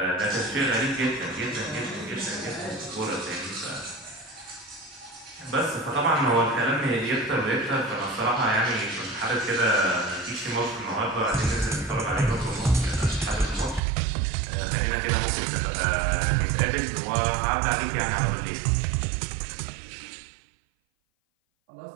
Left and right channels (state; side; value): drops out; left; at 13.8 s